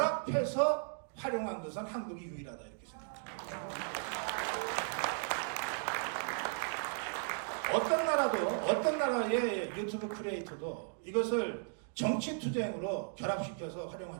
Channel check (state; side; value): silent; left; digital silence